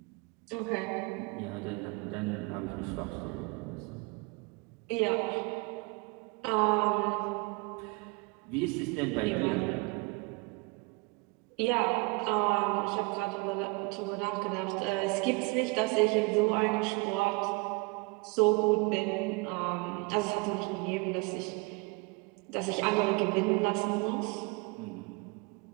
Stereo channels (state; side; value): quieter; left; 28.3 dB